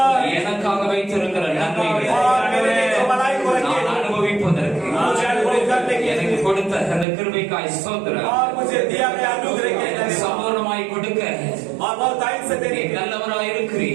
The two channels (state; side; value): drops out; left; at 7.1 s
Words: எனக்காக வைத்திருக்கிற நன்மைகளை और मेरे लिए जो भलाई को रखे நான் அனுபவிப்பதற்கு मुझे अनुभव करने के எனக்கு लिए, கொடுத்த அந்த கிருபைக்காய் ஸ்தோத்திரம். और मुझे दिया गया अनुग्रह के எனக்கு लिए, சம்பூர்ணமாய் கொடுக்க और बहुत टाइम से देने நீ के लिए நல்லவராய்